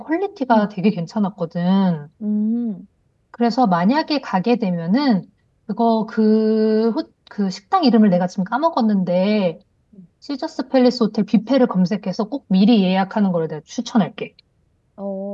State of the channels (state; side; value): identical; both; correlation 1.00